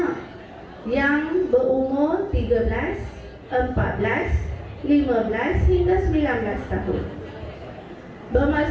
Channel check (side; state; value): both; identical; correlation 1.00